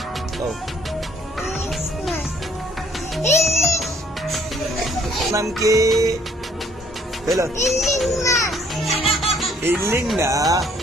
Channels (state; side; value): normal; both; correlation 0.62